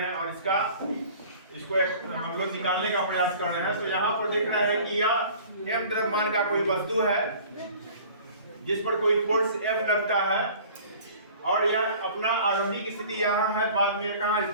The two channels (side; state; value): both; inverted; correlation -0.47